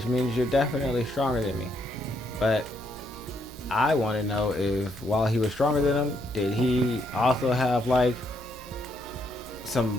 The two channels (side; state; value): both; normal; correlation 0.75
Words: means you're definitely stronger than me. But I want to know if while he was stronger than him, did he also have like